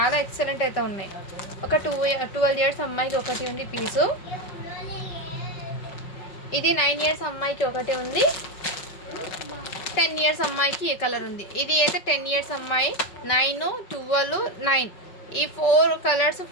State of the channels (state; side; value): late; right; 5.2 ms